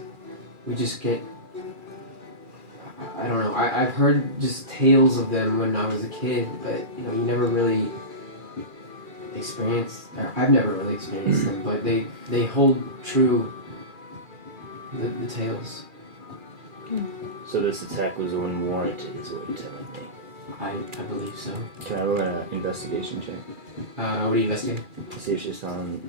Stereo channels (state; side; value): late; left; 2.4 ms